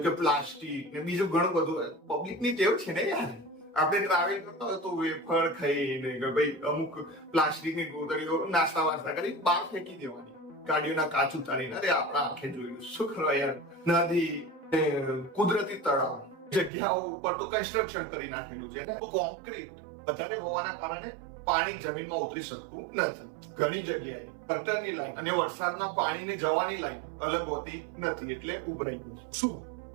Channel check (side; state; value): left; drops out; at 16.7 s